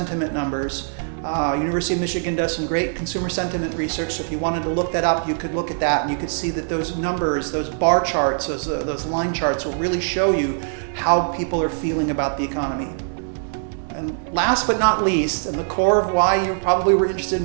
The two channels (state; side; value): silent; left; digital silence